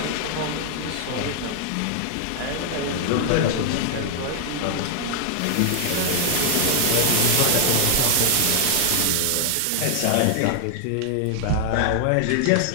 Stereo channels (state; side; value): different; both; correlation 0.00